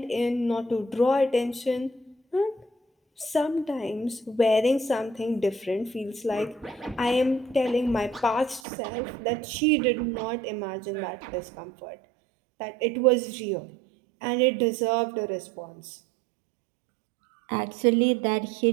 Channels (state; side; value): drops out; left; at 8.6 s